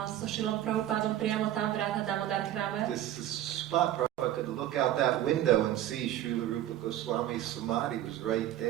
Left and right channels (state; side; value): quieter; left; 12.7 dB